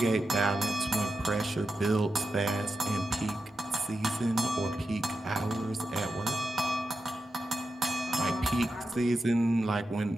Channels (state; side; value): normal; both; correlation 0.89